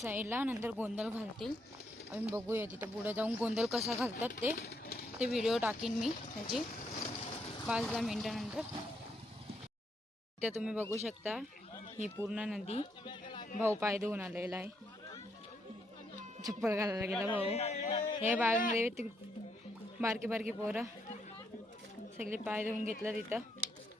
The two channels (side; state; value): both; normal; correlation 0.76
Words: नंतर गोंधळ घालतील. आम्ही बघूया तिथं पुढे जाऊन गोंधळ कसा घालतात ते व्हिडिओ टाकीन मी त्याची 5-10 मिनिटानंतर. इथे तुम्ही बघू शकता ही पूर्ण नदी. भाऊ पाय धुवून आलेला आहे. चप्पल घालायला गेला भाऊ. हे बागेमध्ये बारकी बारकी पोरं सगळे पाय धुवून घेतलं तिथं